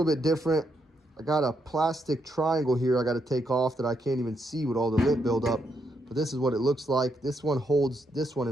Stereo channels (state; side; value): normal; both; correlation 0.78